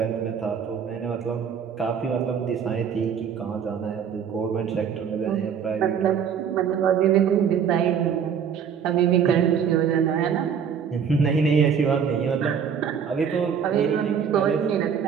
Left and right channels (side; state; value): left; quieter; 7.5 dB